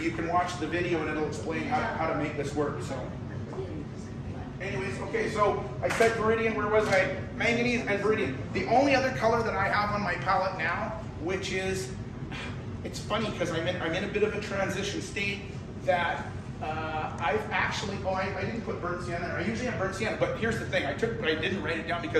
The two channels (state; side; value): identical; both; correlation 1.00